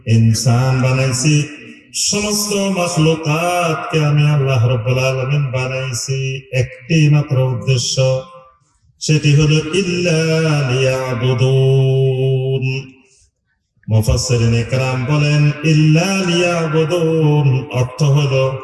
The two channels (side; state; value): both; identical; correlation 1.00